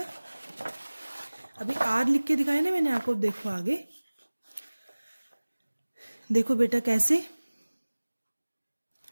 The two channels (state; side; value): inverted; both; correlation -1.00